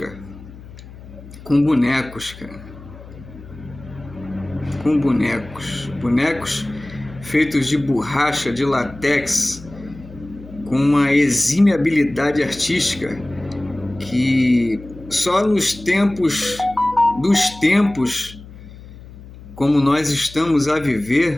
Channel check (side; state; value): left; noise; hum, 17 dB below the sound